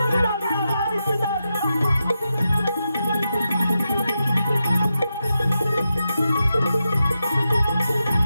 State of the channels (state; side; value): inverted; both; correlation -0.88